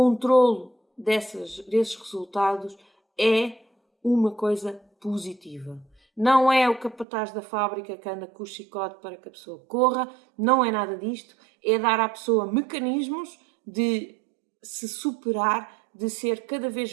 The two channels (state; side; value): drops out; left; at 7.1 s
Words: desses resultados é uma coisa positiva. Não é o capataz da fábrica que anda com o chicote para que a pessoa corra, não é nada disto, é dar à pessoa mecanismos de se superar, de ser cada vez